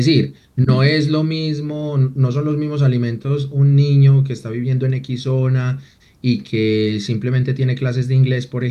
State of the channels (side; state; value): both; identical; correlation 1.00